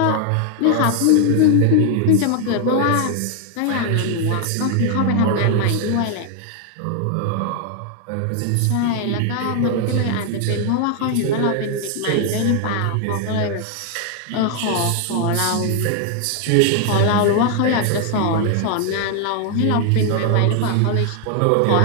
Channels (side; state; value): both; different; correlation 0.00